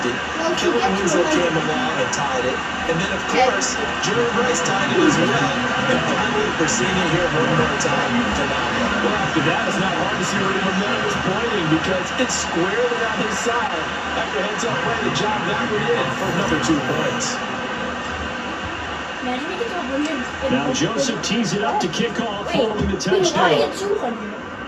Kellen Winslow came along and tied it. And then, of course, Jerry Rice tied it as well. And finally, we're seeing it here one more time. Phenomenal. Well, after that, it's not hard to see where the momentum is pointing because it's squarely on his side. After heads-up play, the job that we're in for another 2 points. Now Joseph tees it up to kick off following the touchdown.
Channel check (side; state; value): both; identical; correlation 1.00